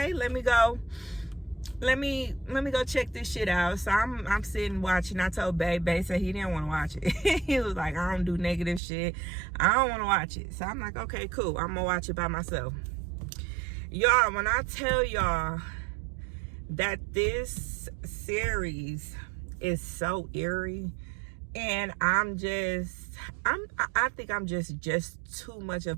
me go. Let me go check this shit out. So I'm sitting watching. I told Babe said he didn't want to watch it. He was like, I don't do negative shit. I don't want to watch it. So I'm like, okay, cool. I'm gonna watch it by myself. Y'all, when I tell y'all that this series is so eerie, and I think I'm just too much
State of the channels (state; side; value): drops out; left; at 8.8 s